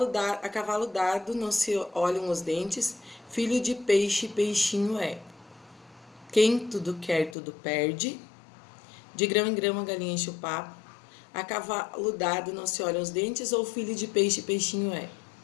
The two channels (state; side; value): drops out; right; at 7.4 s